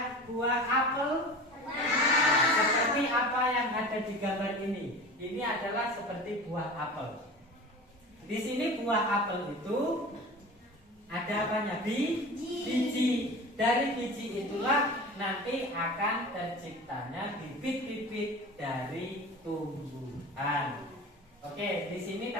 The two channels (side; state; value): both; normal; correlation 0.35